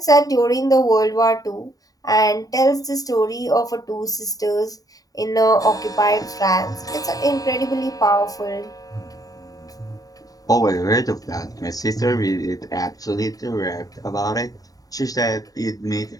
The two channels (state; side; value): late; right; 0.18 ms